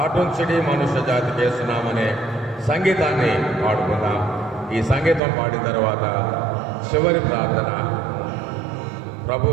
మనుష్య జాతి చేస్తున్నామనే సంగీతాన్ని పాడుకుందాం. ఈ సంగీతం పాడిన తర్వాత చివరి ప్రార్థన,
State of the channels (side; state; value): left; drops out; at 5.2 s